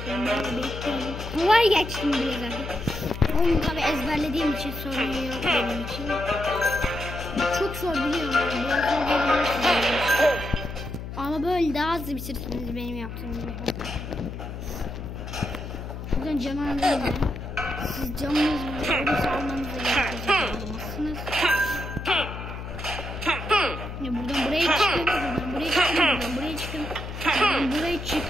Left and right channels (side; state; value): left; noise; hum, 8 dB below the sound